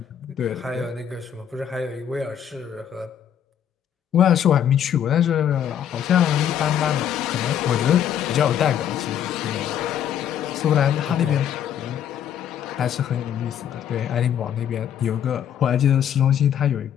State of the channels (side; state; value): right; quieter; 9.4 dB